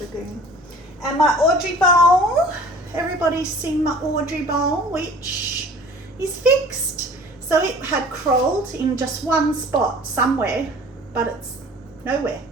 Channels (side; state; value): both; normal; correlation 0.46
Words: lagoon. And my Audrey bowl. Everybody's seen my Audrey bowl, which is fixed. So it had crawled in just one spot somewhere, but it's nowhere.